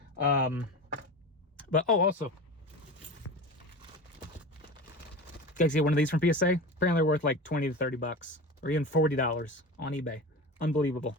But also, guys, get one of these from PSA. Apparently, they're worth like 20 to 30 bucks, or even $40 on eBay. Unbelievable.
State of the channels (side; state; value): both; normal; correlation 0.30